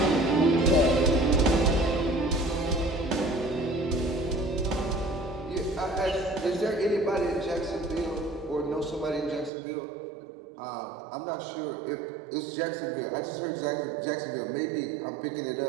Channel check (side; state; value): left; drops out; at 9.5 s